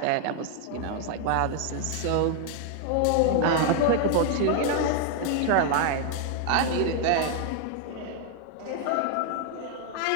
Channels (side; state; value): both; different; correlation 0.00